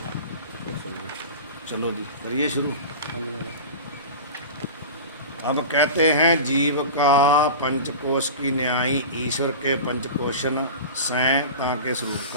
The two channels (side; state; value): both; inverted; correlation -0.31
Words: चलो जी करिए शुरू। अब कहते हैं जीव का पंचकोश की न्यायी ईश्वर के पंचकोशन सैं ताके स्वरूप